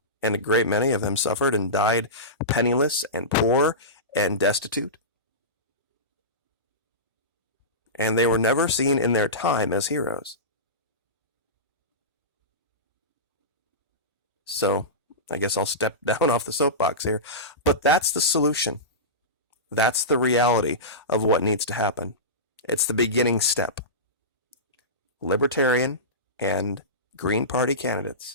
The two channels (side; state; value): both; normal; correlation -0.19